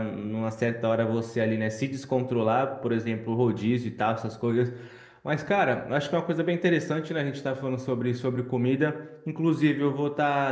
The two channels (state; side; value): identical; both; correlation 1.00